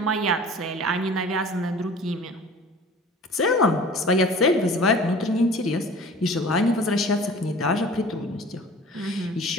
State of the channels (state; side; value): normal; both; correlation 0.43